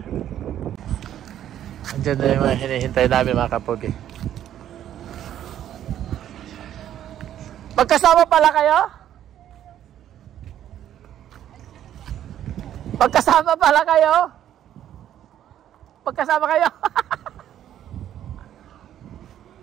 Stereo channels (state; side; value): quieter; left; 11.1 dB